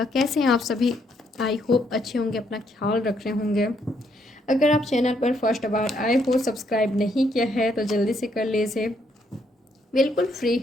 कैसे हैं आप सभी? आई होप अच्छे होंगे, अपना ख्याल रख रहे होंगे। अगर आप चैनल पर फर्स्ट बार आए हो, सब्सक्राइब नहीं किया है तो जल्दी से कर लीजिए, बिल्कुल फ्री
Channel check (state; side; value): normal; both; correlation 0.73